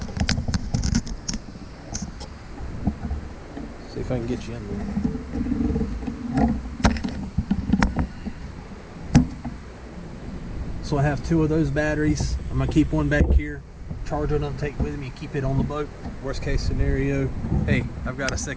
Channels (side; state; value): both; identical; correlation 1.00